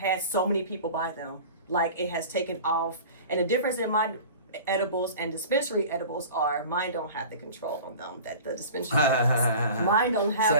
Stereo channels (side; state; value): both; inverted; correlation -0.39